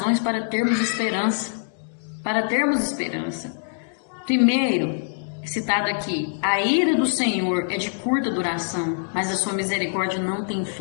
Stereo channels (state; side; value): silent; right; digital silence